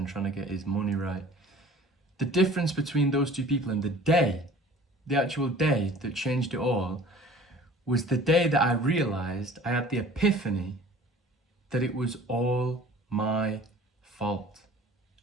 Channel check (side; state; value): both; normal; correlation 0.47